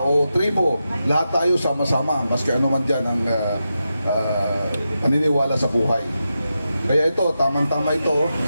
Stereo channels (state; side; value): inverted; both; correlation -0.89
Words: tribo. Lahat tayo sama-sama, maski ano man dyan ang paniniwala sa buhay. Kaya ito, tamang-tama ito,